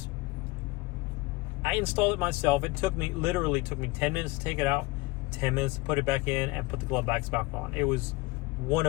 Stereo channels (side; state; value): right; quieter; 22.6 dB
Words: I installed it myself. It literally took me 10 minutes to take it out, 10 minutes to put it back in, and put the glove box back on. It was one